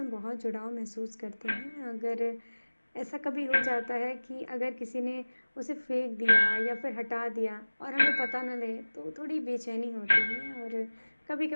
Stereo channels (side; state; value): both; inverted; correlation -1.00